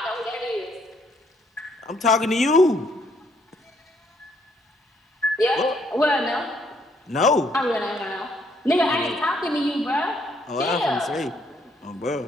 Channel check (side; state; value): both; normal; correlation 0.69